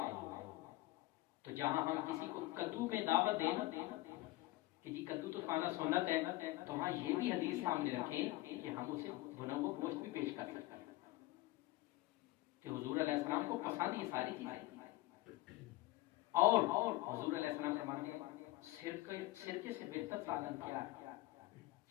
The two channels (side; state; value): right; quieter; 18.7 dB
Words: تو جہاں ہم کسی کو کدو میں دعوت دیں کہ جی کدو تو کھانا سنت ہے، تو وہاں یہ بھی حدیث سامنے رکھیں کہ ہم اسے بھنا ہوا گوشت بھی پیش کر سکتے ہیں کہ حضور علیہ السلام کو پسند یہ ساری چیزیں۔ اور حضور علیہ السلام فرماتے ہیں سرکے سے بہتر سالن کیا ہے؟